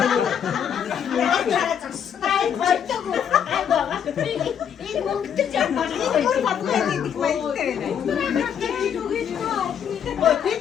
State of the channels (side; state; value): right; quieter; 8.4 dB